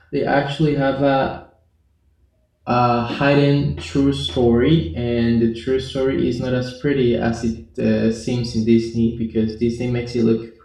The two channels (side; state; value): both; identical; correlation 1.00